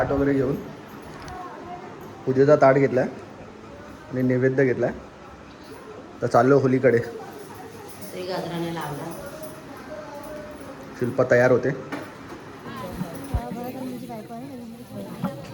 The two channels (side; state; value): both; identical; correlation 1.00